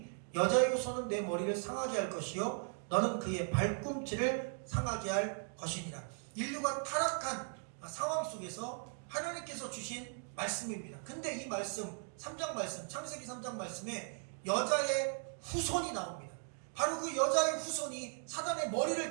여자의 후손은 내 머리를 상하게 할 것이요 너는 그의 발꿈치를 상하게 할 것이니라. 인류가 타락한 상황 속에서 하나님께서 주신 말씀입니다. 근데 이 말씀 3장 말씀 창세기 3장 말씀에 여자의 후손이 나옵니다. 바로 그 여자의 후손이 사단의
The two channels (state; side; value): silent; left; 53 dB below the other